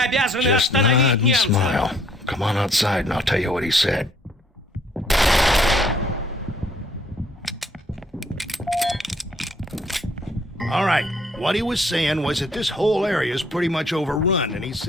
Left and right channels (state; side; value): normal; both; correlation 0.63